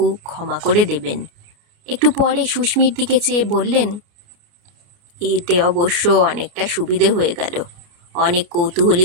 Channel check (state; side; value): late; left; 29 ms